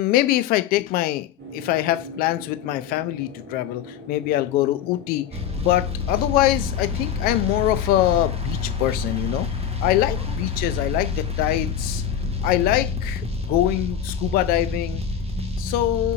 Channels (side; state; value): right; quieter; 9.8 dB